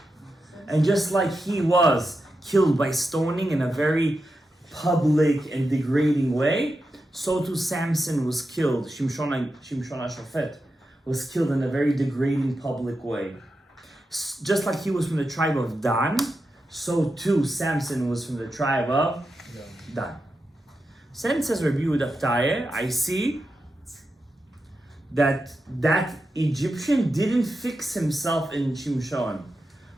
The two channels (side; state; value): both; normal; correlation 0.89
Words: And just like he was killed by stoning in a very public and degrading way, so too Samson was killed, Shimshon HaShofet was killed in a very degrading public way. Just like he was from the tribe of Dan, so too Samson was from the tribe of Dan. Then says Rabbi Yehuda, I see that Egyptian didn't fix himself in Shimshon,